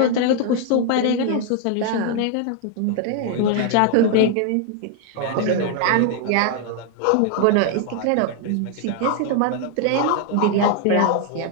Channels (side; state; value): both; different; correlation 0.00